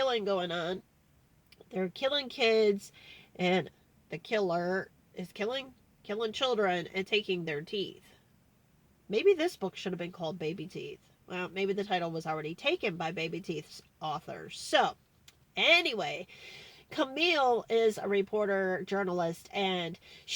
going on. They're killing kids, and the killer is killing children and taking their teeth. Maybe this book should have been called Baby Teeth. Well, maybe the title was already taken by Baby Teeth's author. So, anyway, Camille is a reporter, journalist, and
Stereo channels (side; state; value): both; identical; correlation 1.00